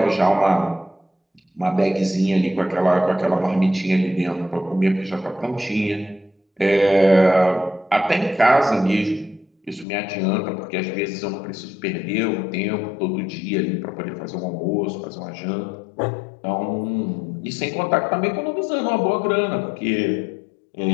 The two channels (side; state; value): right; drops out; at 9.9 s